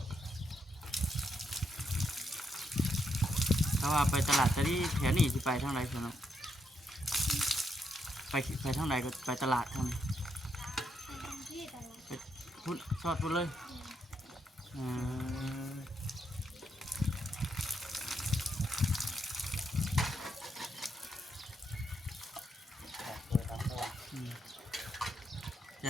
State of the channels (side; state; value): both; normal; correlation 0.79